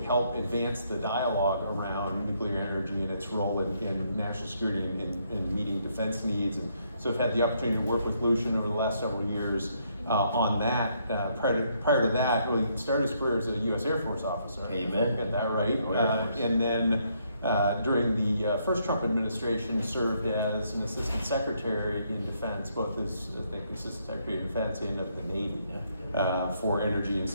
help advance the dialogue around nuclear energy and its role in national security and in meeting defense needs. And so I've had the opportunity to work with Lucian over the last several years on that. Prior to that, really started his career as a U.S. Air Force officer. Amen. Got that right. And then during the first Trump administration, served as an assistant secretary in defense, both as assistant secretary of defense and of the Navy for energy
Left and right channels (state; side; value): inverted; both; correlation -0.73